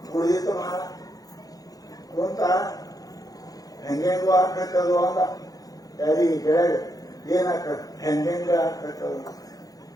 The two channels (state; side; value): late; right; 0.18 ms